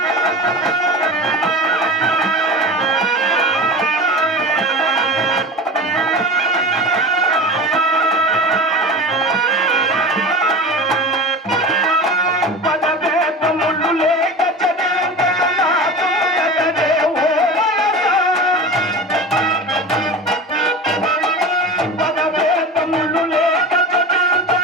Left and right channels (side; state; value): both; normal; correlation 0.31